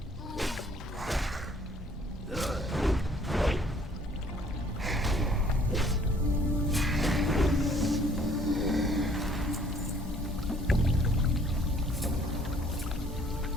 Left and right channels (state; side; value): normal; both; correlation 0.59